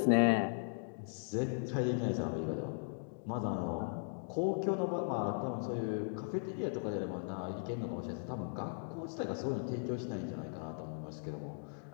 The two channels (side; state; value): right; silent; digital silence